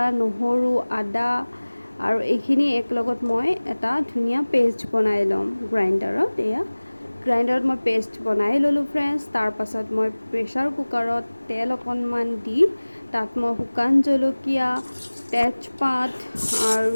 নহৰু, আদা আৰু এইখিনি একেলগত মই এটা ধুনীয়া পেষ্ট বনাই ল'ম গ্ৰাইণ্ডাৰত। গ্ৰাইণ্ডাৰত মই পেষ্ট বনাই ল'লোঁ ফ্ৰেণ্ডছ। তাৰপাছত মই প্ৰেছাৰ কুকাৰত তেল অকণমান দি তাত মই শুকান জলকীয়া, তেজপাত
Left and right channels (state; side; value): inverted; both; correlation -1.00